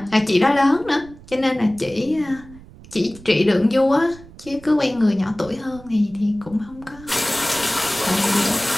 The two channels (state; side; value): noise; right; rumble, 20 dB below the sound